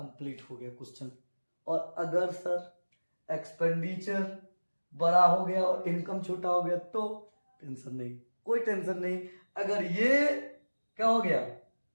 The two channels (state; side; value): inverted; both; correlation -1.00